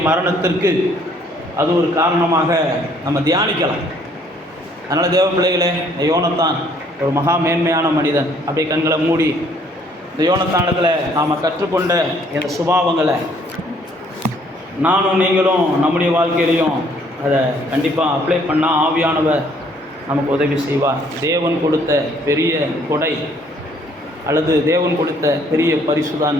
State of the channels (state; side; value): normal; both; correlation 0.63